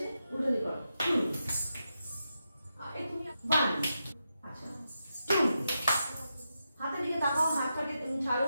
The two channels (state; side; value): inverted; both; correlation -0.87